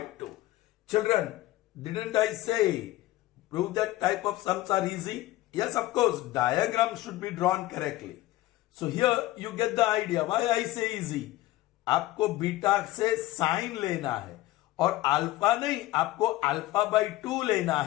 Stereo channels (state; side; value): quieter; right; 16.9 dB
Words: 2. Children, didn't I say prove that type of sums are easy? Yes, of course, diagram should be drawn correctly. So here you get the idea. Why I say easy? आपको beta से sign लेना है और alpha नहीं, आपको alpha by 2 लेना